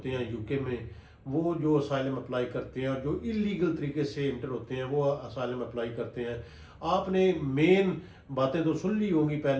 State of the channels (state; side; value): identical; both; correlation 1.00